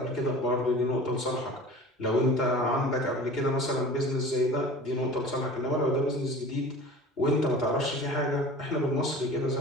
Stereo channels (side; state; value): both; normal; correlation 0.40